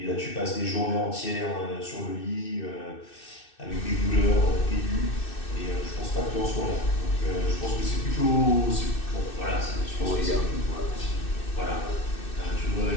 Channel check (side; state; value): right; late; 2.6 ms